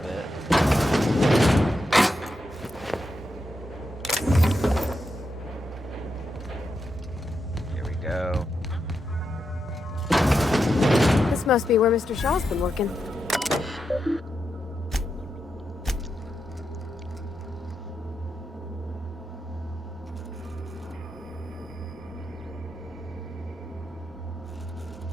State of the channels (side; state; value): both; normal; correlation 0.85